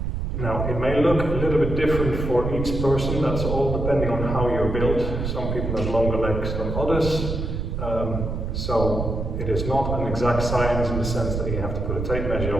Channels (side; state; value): right; noise; rumble, 3 dB below the sound